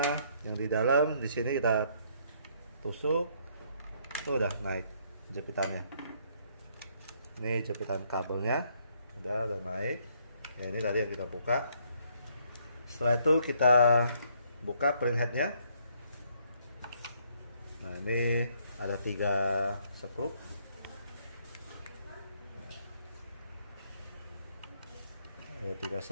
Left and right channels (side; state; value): both; inverted; correlation -0.68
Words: yang di dalam di sini kita tusuk. Tuh udah naik jepitannya. Ini jepitan kabelnya udah naik. Ya ini tadi yang kita buka. Setelah itu kita buka printheadnya. Nah ini ada 3 skrup. Ada 3